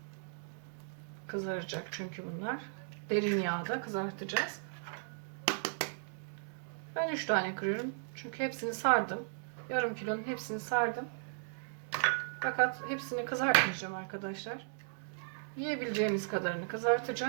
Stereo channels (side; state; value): left; silent; digital silence